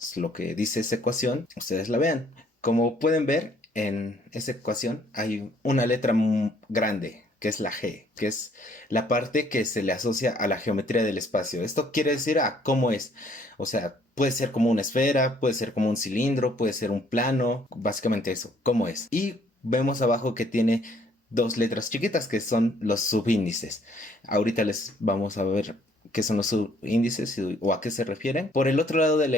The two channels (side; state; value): both; normal; correlation 0.63